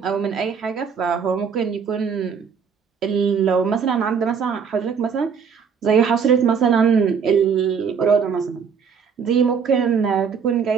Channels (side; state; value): left; quieter; 6.5 dB